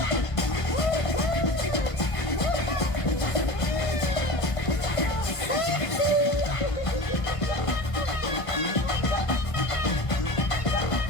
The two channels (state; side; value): late; right; 1.5 ms